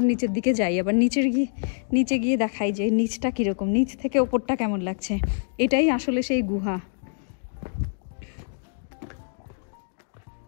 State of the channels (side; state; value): right; silent; digital silence